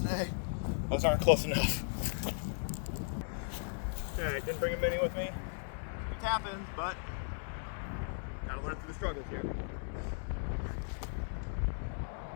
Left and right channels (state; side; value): silent; right; digital silence